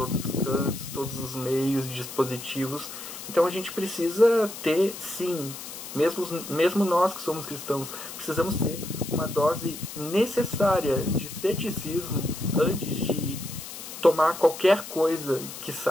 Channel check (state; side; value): noise; left; hiss, 11 dB below the sound